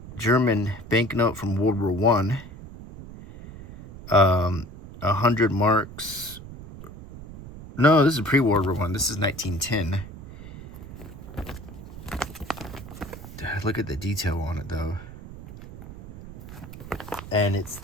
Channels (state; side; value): noise; right; rumble, 14 dB below the sound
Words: German banknote from World War One. 100 marks. No, this is pre-World War One. This is 1910. Look at the detail on it, though. And it's